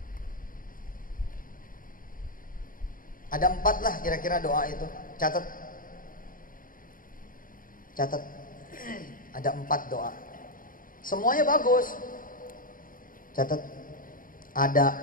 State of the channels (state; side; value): late; right; 0.40 ms